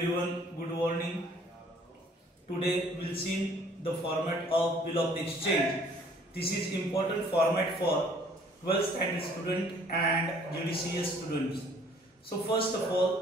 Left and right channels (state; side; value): normal; both; correlation 0.58